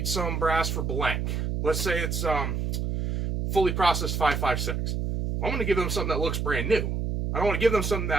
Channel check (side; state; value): right; noise; hum, 1 dB below the sound